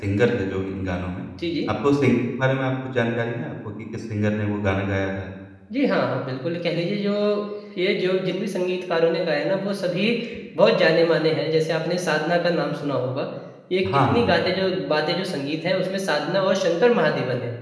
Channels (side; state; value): both; identical; correlation 1.00